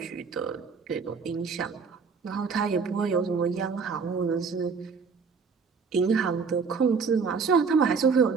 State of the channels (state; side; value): quieter; left; 5.3 dB